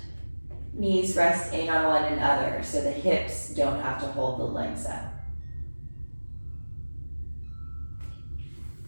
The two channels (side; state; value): both; inverted; correlation -1.00